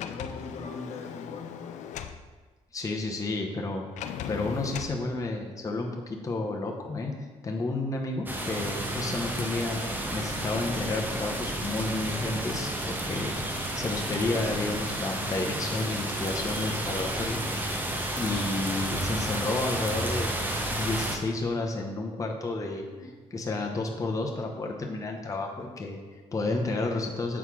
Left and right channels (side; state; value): both; normal; correlation 0.62